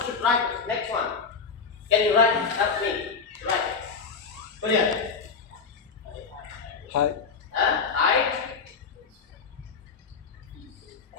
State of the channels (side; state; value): right; quieter; 5.3 dB